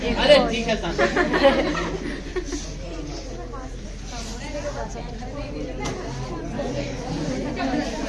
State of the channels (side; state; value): both; identical; correlation 1.00